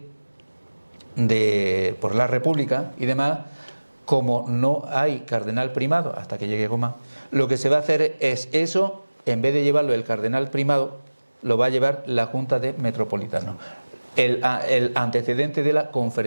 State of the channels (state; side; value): inverted; both; correlation -1.00